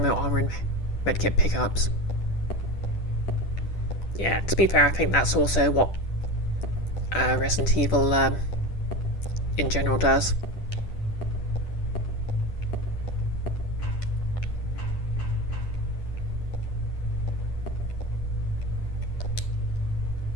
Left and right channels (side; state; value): right; late; 10 ms